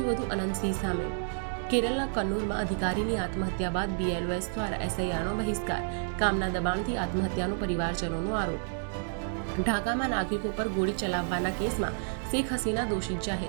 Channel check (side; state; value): left; silent; digital silence